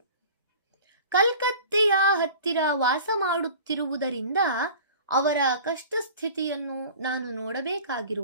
ಕಲ್ಕತ್ತೆಯ ಹತ್ತಿರ ವಾಸ ಮಾಡುತ್ತಿರುವುದರಿಂದ ಅವರ ಕಷ್ಟ ಸ್ಥಿತಿಯನ್ನು ನಾನು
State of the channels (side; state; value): both; inverted; correlation -0.42